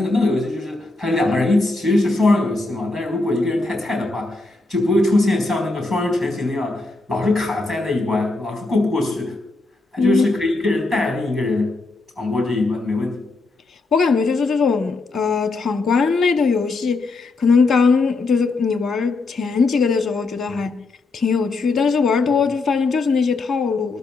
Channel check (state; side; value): quieter; right; 3.4 dB